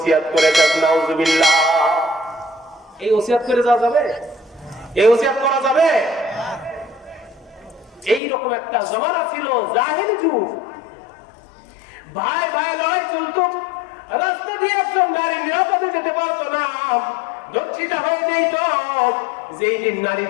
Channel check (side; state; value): right; drops out; at 8.2 s